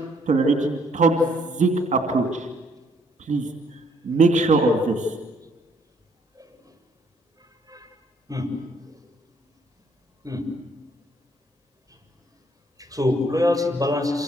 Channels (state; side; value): normal; both; correlation 0.66